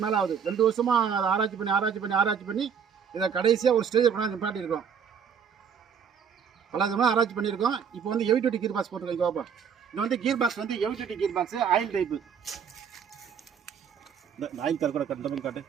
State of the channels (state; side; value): quieter; left; 7.2 dB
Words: மேலே ஆகுது. 2 வருஷமாக அதை ஆராய்ச்சி பண்ணி இதை கடைசியாக ஒரு ஸ்டேஜில் கொண்டாந்து நிப்பாட்டியிருக்கோம். பல விதமாக ஆராய்ச்சி பண்ணியிருக்கோம். இப்போ வந்து ஹெவி டியூட்டி கீர் பாக்ஸ் போட்டிருக்கோம். இங்கே பார்ப்போம். இது வந்து கீர் பாக்ஸ் வந்து heavy duty gear box, oil type. Oil தர கூட கண்டபிள் காட்டு.